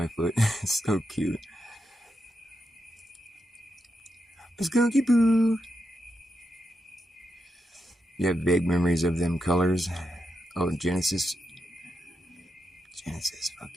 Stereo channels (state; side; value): normal; both; correlation 0.85